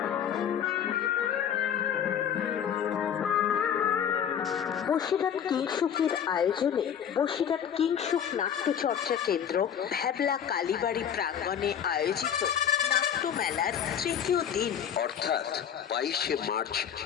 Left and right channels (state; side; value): quieter; right; 8.7 dB